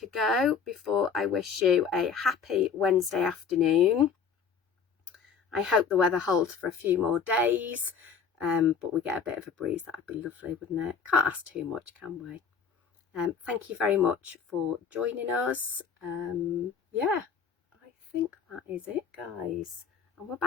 go before I wish you a happy Wednesday afternoon? I hope the weather holds for a few more days. But we get a bit of a breeze. That would be lovely, wouldn't it? Can't ask too much, can we? Thank you very much for joining us. Yeah, I think that is it, guys. And we're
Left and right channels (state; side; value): quieter; right; 6.3 dB